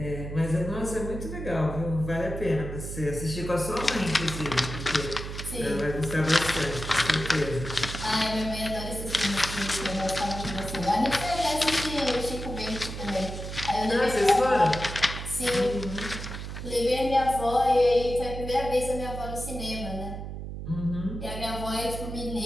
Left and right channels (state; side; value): noise; right; hum, 7 dB below the sound